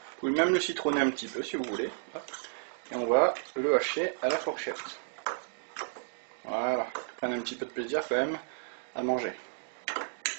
pouvez même le citronner un petit peu si vous voulez. Et on va le hacher à la fourchette. Voilà, prenez un petit peu de plaisir quand même à manger.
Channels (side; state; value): left; silent; digital silence